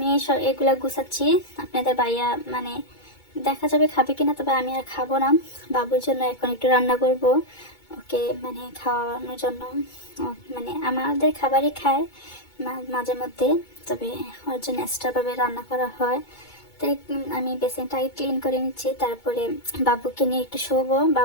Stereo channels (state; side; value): late; right; 2.2 ms